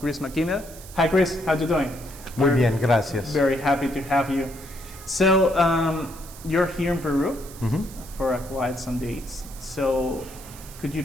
McKinnell. Hi, Chris. How you doing? Muy bien, gracias. Very happy to have you. So, you're here in Peru for quite some days. So, could you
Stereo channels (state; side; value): noise; right; hiss, 17 dB below the sound